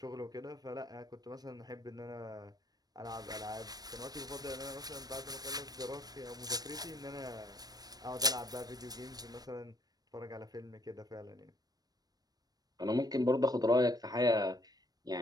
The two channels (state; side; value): late; left; 0.19 ms